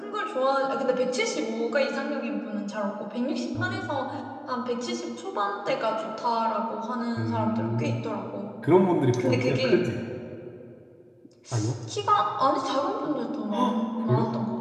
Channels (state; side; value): identical; both; correlation 1.00